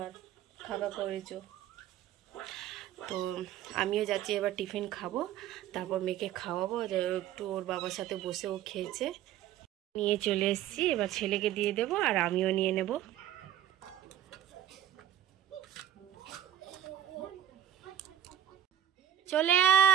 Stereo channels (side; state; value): left; quieter; 11.1 dB